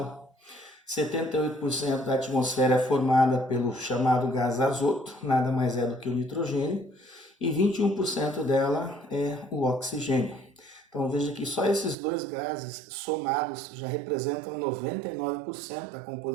78% da atmosfera é formada pelo chamado gás azoto, nada mais é do que o nitrogênio, e 21% dela é o oxigênio. Então veja que só esses dois gases somados já representam 99% da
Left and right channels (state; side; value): drops out; left; at 12.0 s